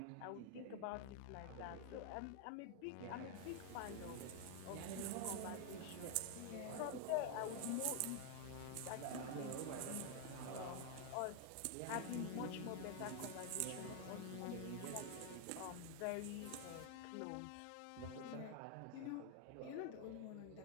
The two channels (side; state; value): both; different; correlation 0.00